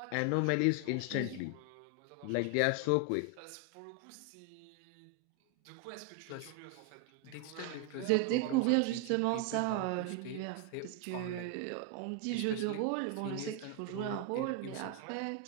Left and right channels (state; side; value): different; both; correlation 0.01